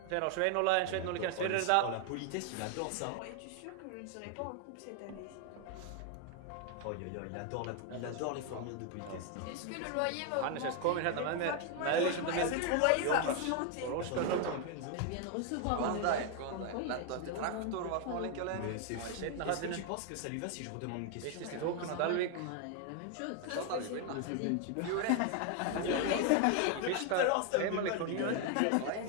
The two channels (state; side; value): different; both; correlation 0.01